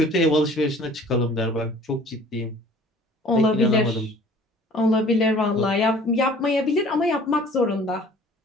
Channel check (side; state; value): both; normal; correlation 0.50